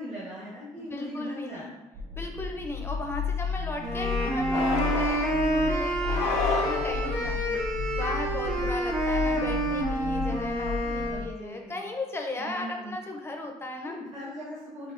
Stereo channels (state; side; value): normal; both; correlation 0.57